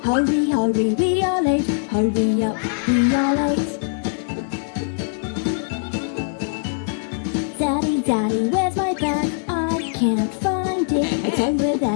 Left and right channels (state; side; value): silent; right; 64 dB below the other